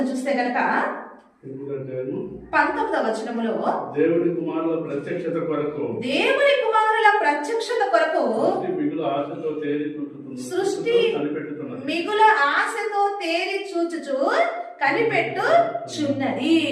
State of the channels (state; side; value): identical; both; correlation 1.00